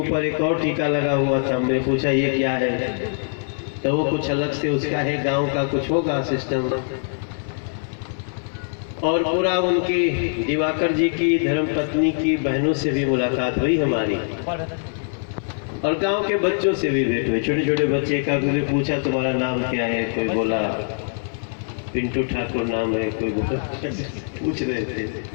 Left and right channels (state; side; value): silent; right; 58 dB below the other